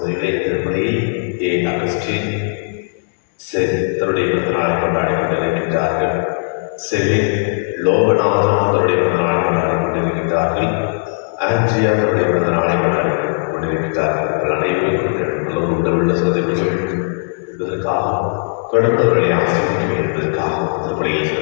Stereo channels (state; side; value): silent; right; digital silence